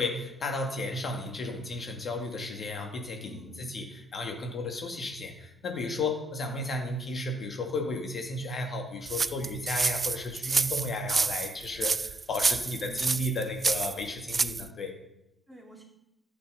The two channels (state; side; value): normal; both; correlation 0.73